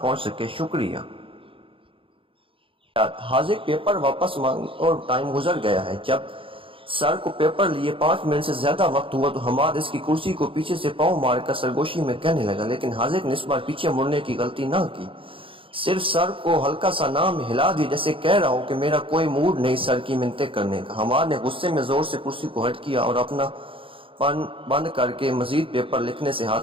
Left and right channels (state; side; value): late; left; 0.26 ms